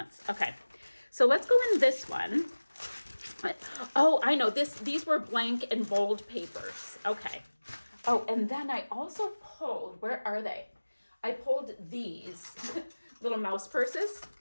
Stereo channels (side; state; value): both; inverted; correlation -1.00